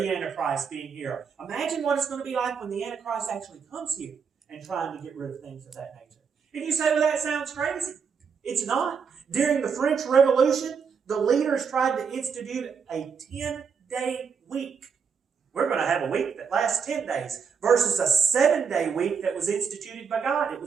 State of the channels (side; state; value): left; quieter; 6.2 dB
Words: Antichrist being here. Imagine what it's going to be like when the Antichrist actually comes here and trying to get rid of things of that nature. And you say, well, that sounds crazy. It's not. During the French Revolution, the leaders tried to institute a 10-day week. We're going to have a week that lasts 10 days versus a 7-day week that was instituted by God. It